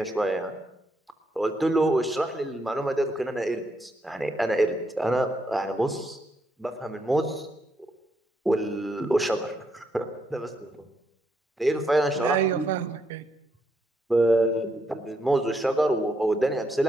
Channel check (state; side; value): normal; both; correlation 0.77